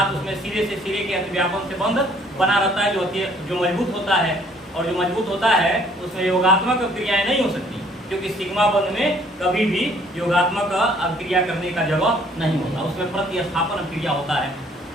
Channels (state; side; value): normal; both; correlation 0.60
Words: उसमें सिरे से सिरे के अतिव्यापन से बंध बना रहता है जो मजबूत होता है। और जो मजबूत होता है उसमें योगात्मक क्रियाएं नहीं हो सकती, क्योंकि सिग्मा बंध में कभी भी योगात्मक अभिक्रिया करने का जगह नहीं होता, उसमें प्रतिस्थापन अभिक्रिया होता है।